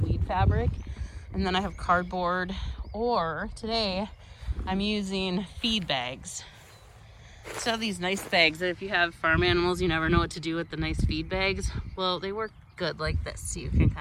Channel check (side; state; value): both; identical; correlation 1.00